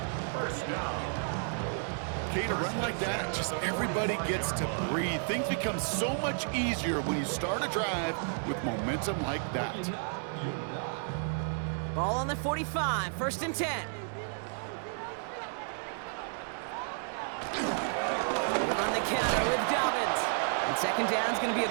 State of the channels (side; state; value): left; silent; 56 dB below the other